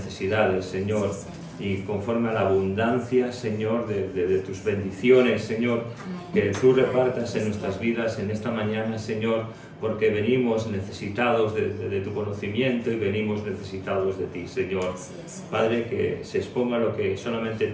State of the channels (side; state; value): both; identical; correlation 1.00